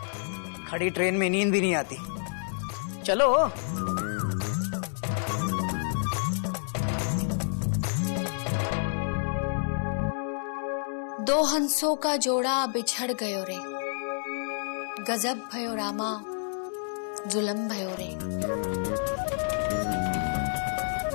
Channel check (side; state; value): right; silent; digital silence